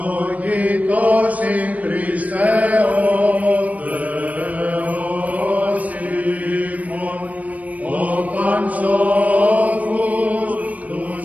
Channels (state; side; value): late; left; 0.070 ms